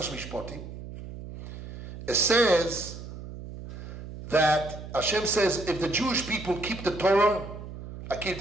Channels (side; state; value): right; noise; hum, 11 dB below the sound